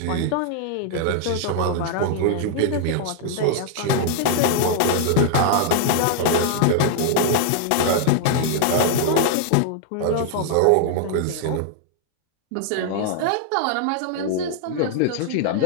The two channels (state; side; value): different; both; correlation 0.00